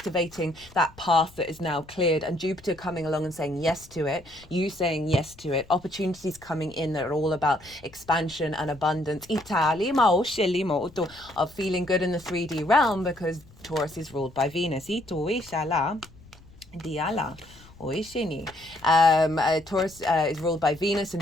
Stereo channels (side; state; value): left; noise; rumble, 23 dB below the sound